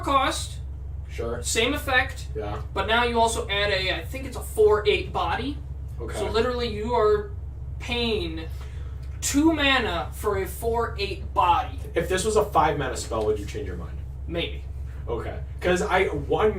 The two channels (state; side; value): identical; both; correlation 1.00